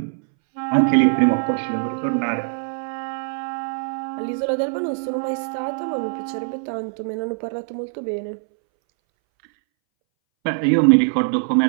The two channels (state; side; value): silent; left; 62 dB below the other